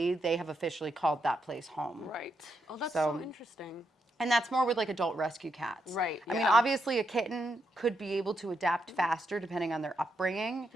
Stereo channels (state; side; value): normal; both; correlation 0.81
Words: they have officially called that place home. Right. Oh, that's so interesting. And that's more with like adult rescue cats. Right. I mean, obviously a kitten could be able to adapt faster depending on their upbringing.